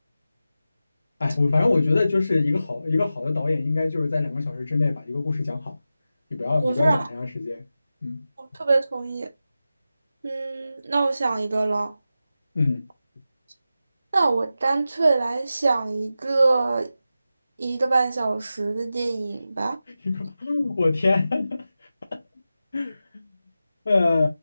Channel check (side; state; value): both; inverted; correlation -0.92